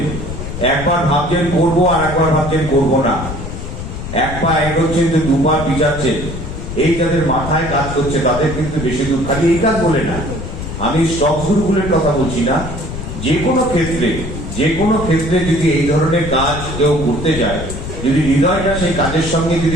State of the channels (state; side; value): noise; left; rumble, 7 dB below the sound